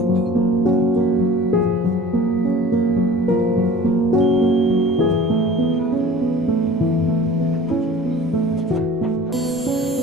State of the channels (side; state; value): right; noise; rumble, 27 dB below the sound